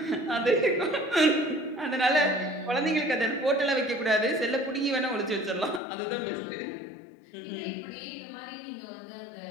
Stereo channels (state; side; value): drops out; right; at 5.8 s